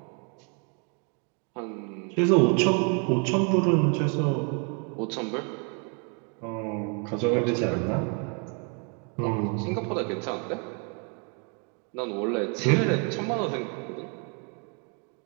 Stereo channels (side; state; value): left; quieter; 37.8 dB